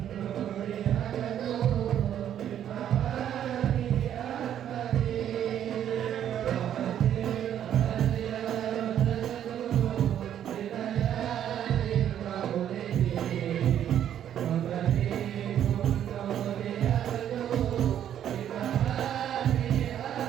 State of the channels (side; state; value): left; quieter; 10.2 dB